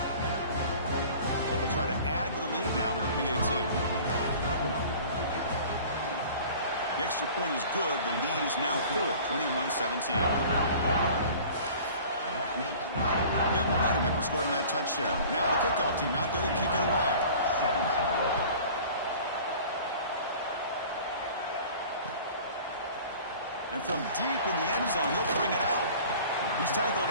Try to add to the lead now with the PAT. The extra point is good. The lead is now 4, 21-17. Got momentum after scoring that touchdown. Now the kickoff team out there to kick it away. And from deep in the end zone, he'll bring it out. He's tackled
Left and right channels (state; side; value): inverted; both; correlation -0.44